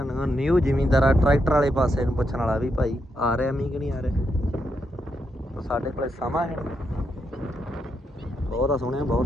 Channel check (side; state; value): both; normal; correlation 0.82